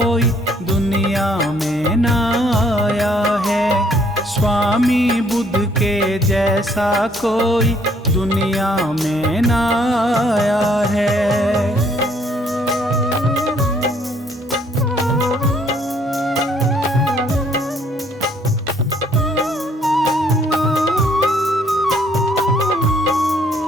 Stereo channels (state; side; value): normal; both; correlation 0.65